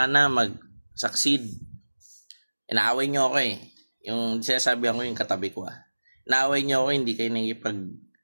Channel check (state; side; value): inverted; both; correlation -1.00